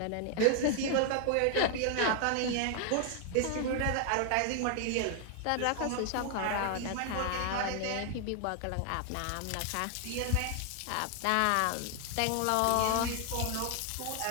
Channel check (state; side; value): different; both; correlation 0.00